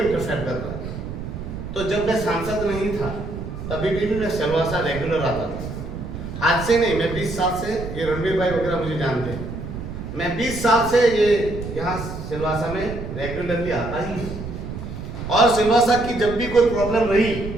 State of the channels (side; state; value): right; noise; rumble, 8 dB below the sound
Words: कर रहा है। तो जब मैं सांसद नहीं था तभी भी मैं सिलवासा रेगुलर आता था। आज से नहीं, मैं 20 साल से, ये रणवीर भाई वगैरह मुझे जानते हैं, मैं 20 साल से ये यहाँ सिलवासा में रेगुलरली आता ही। और सिलवासा की जब भी कोई प्रॉब्लम रही